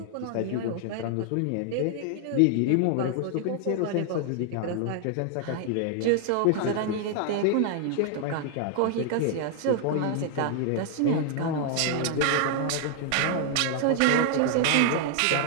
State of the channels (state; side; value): different; both; correlation 0.00